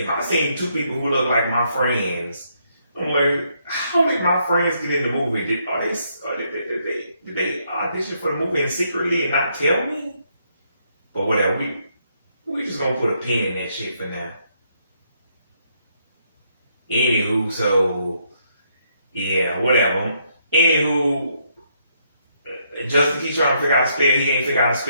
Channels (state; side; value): inverted; both; correlation -0.74